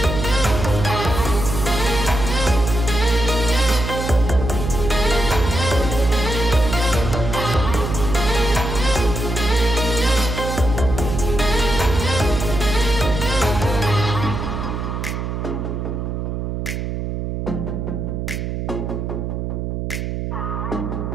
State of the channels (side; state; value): right; noise; hum, 3 dB below the sound